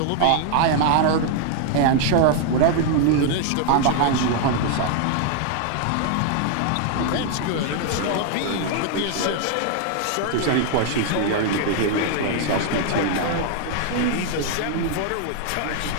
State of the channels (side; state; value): both; different; correlation 0.00